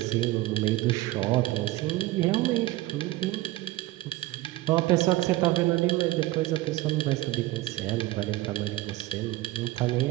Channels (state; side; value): quieter; left; 17.6 dB